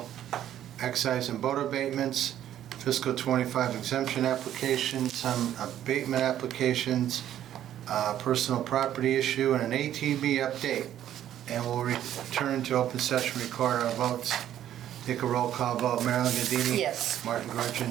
excise and boat abatements, fiscal 25 exemption applications, some abatement applications, personal property issue, and an ATV update. And we'll return to open session, record our votes. Take a roll call vote. Marilyn Gadini? Yes. Martin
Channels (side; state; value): left; quieter; 11.4 dB